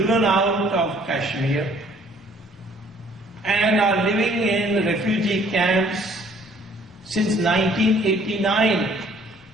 out of Kashmir and are living in refugee camps since 1989,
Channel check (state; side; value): normal; both; correlation 0.58